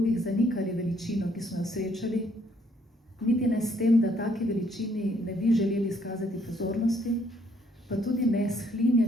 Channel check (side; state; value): both; normal; correlation 0.67